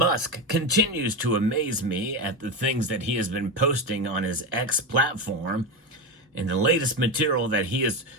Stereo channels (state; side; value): normal; both; correlation 0.16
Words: continues to amaze me at the things that he has been posting on his X platform. And the latest material that he has